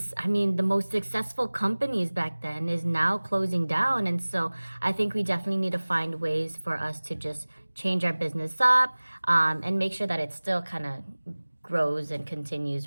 I mean, the most successful companies back then is now closing down. And so I think we definitely need to find ways for us to just change our business up and make sure that it still kind of grows and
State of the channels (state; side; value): inverted; both; correlation -1.00